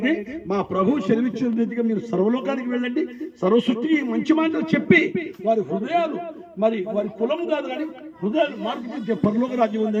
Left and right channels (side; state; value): both; identical; correlation 1.00